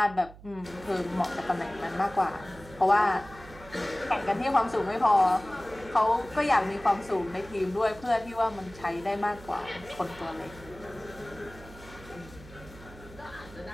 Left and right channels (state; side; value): noise; right; hum, 19 dB below the sound